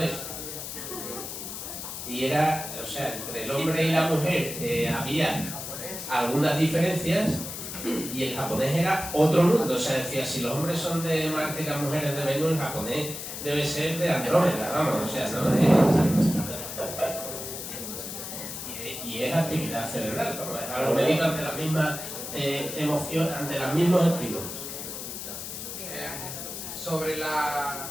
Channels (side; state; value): left; noise; hiss, 8 dB below the sound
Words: Y era, o sea, entre el hombre y la mujer había algunas diferencias y el japonés era otro mundo. O sea, decía, si los hombres son de Marte y las mujeres de Venus, el japonés debe ser de Andrómeda, vamos, o sea, no de... Y es actividad cerebral, vamos, es algo medido ante las mismas emociones, ante los mismos estímulos. Sobre